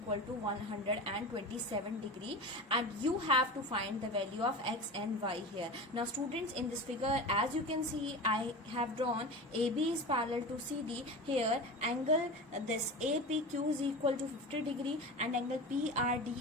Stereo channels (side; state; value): both; normal; correlation 0.29